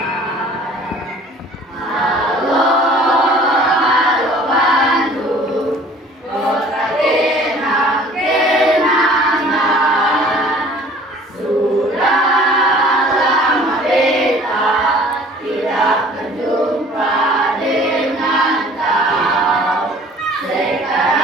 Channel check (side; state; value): both; normal; correlation 0.50